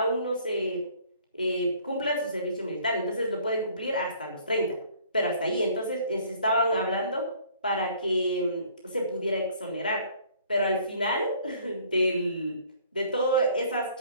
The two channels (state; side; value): inverted; both; correlation -0.56